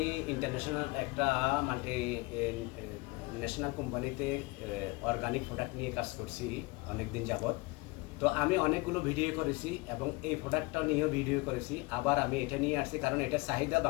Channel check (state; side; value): quieter; right; 24.3 dB